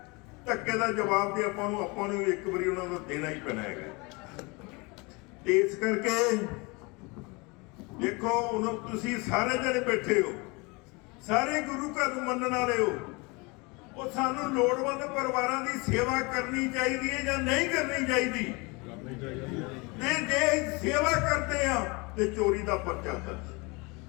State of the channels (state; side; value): quieter; right; 27.5 dB